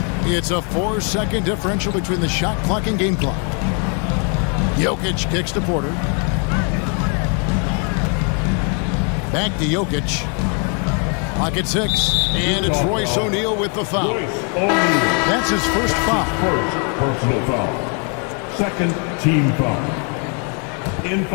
It's a 4-second differential between the shot clock and game clock. Jokic kicks to Porter. Back to Jokic. Clock at 6. And it's Royce O'Neal with the foul. That's his first foul. First personal foul. Second team foul. In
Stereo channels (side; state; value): right; quieter; 38.4 dB